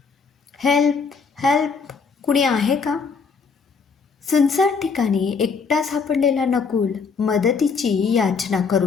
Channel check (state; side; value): quieter; right; 5.3 dB